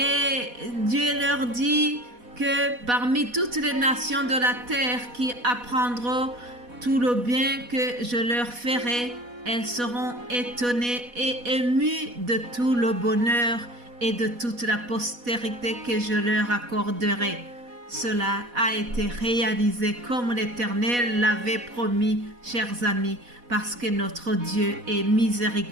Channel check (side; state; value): left; late; 4.1 ms